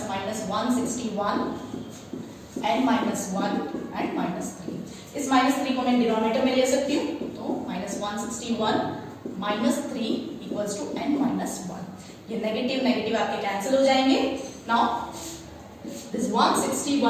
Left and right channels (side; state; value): both; identical; correlation 1.00